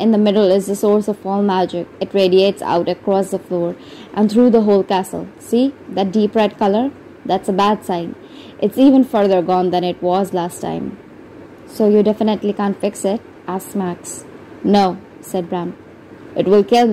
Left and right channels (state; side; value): identical; both; correlation 1.00